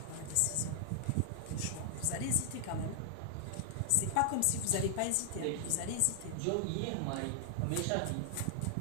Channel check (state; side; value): different; both; correlation 0.00